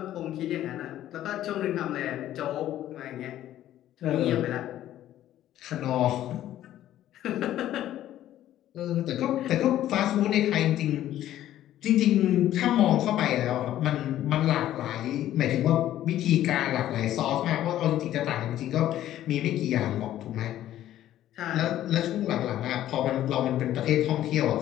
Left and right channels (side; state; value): right; quieter; 12.8 dB